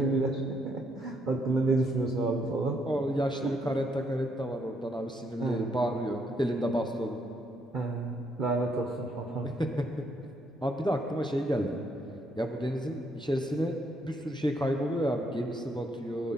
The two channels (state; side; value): normal; both; correlation 0.73